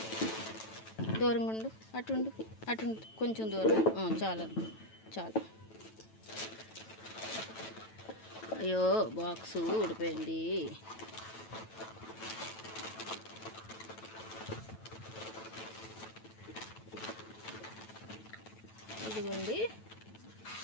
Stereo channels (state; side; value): late; right; 9.1 ms